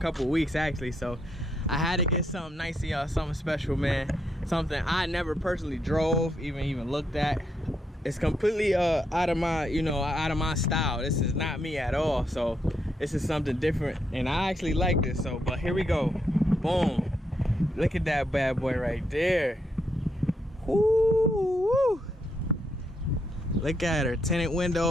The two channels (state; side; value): normal; both; correlation 0.79